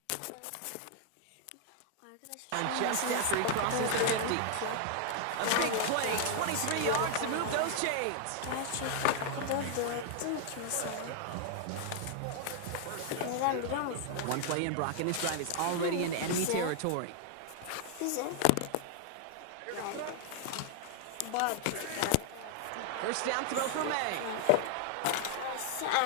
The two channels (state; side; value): different; both; correlation 0.00